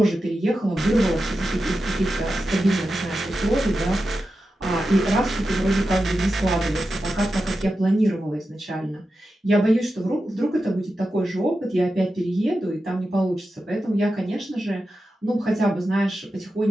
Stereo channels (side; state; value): both; normal; correlation 0.91